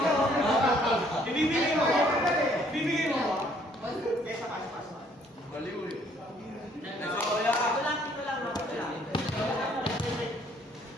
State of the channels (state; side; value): normal; both; correlation 0.63